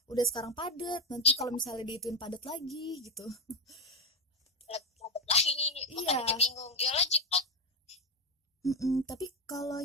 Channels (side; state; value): both; normal; correlation 0.08